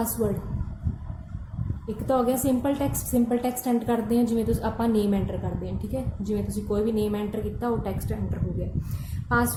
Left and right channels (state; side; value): identical; both; correlation 1.00